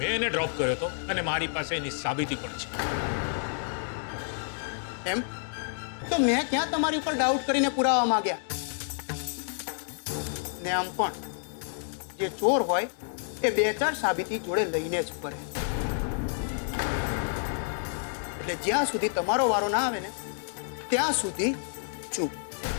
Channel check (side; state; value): right; silent; digital silence